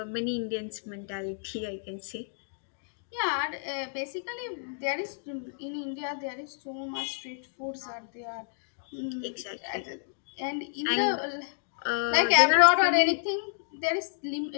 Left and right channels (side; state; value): right; silent; digital silence